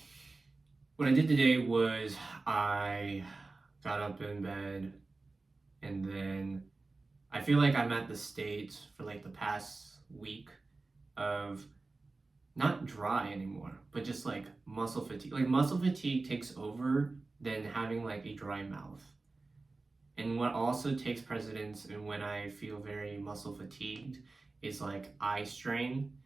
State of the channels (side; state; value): left; quieter; 3.5 dB